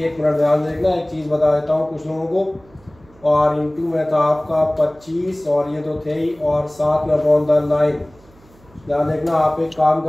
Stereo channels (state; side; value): noise; right; hum, 27 dB below the sound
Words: मिनट ध्यान देखना। एक चीज़ बता देता हूँ कुछ लोगों को। और इंटू में था आपका 25 और ये तो थे ही, और 7 में अपॉन 9। ध्यान देखना, आप एक काम